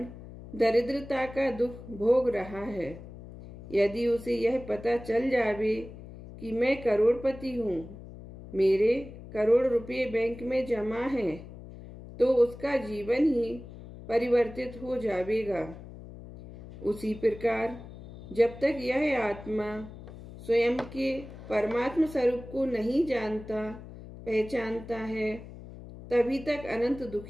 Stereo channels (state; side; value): noise; left; hum, 15 dB below the sound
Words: दरिद्रता का दुख भोग रहा है। यदि उसे यह पता चल जावे कि मैं करोड़पति हूँ, मेरे करोड़ रुपए बैंक में जमा हैं, तो उसका जीवन ही परिवर्तित हो जाएगा। उसी प्रकार जब तक यह आत्मा स्वयं के परमात्म स्वरूप को नहीं जानता, पहचानता है, तभी तक अनंत